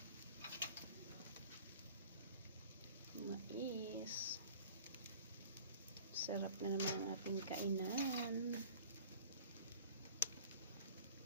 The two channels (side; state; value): both; inverted; correlation -0.46